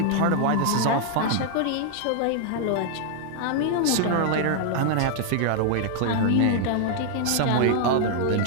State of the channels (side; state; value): both; different; correlation 0.00